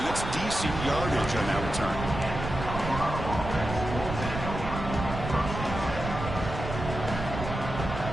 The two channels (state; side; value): noise; right; rumble, 6 dB below the sound